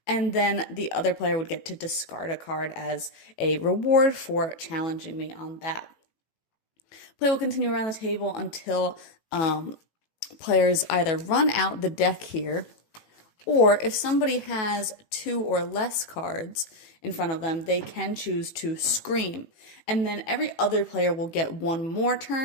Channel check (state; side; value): late; right; 18 ms